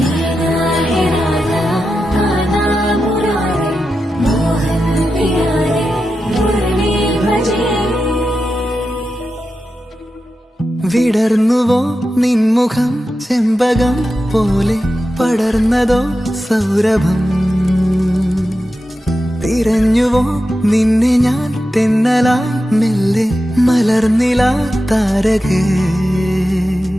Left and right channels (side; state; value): both; normal; correlation 0.90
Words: है राधा कान्हा मुरारी मोहन प्यारे मुरली भजे വിടർന്നുവോ നിൻമുഖം ചെമ്പകം പോലെ പടർന്നതോ സൗരഭം തിരഞ്ഞുവോ നിന്നെ ഞാൻ തെന്നലായി മെല്ലെ മലർന്നില താരകേ